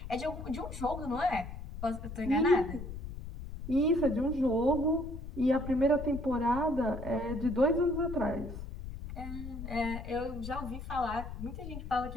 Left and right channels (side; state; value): left; noise; rumble, 9 dB below the sound